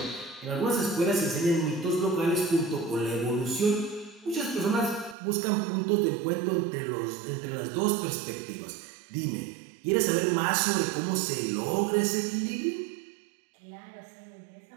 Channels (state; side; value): drops out; left; at 5.2 s